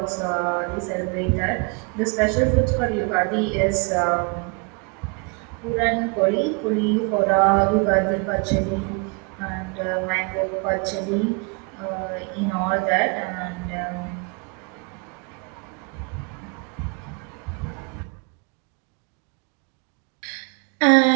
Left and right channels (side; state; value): left; quieter; 33.2 dB